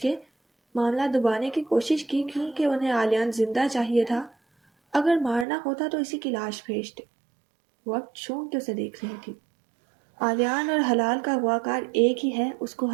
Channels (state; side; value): drops out; left; at 5.5 s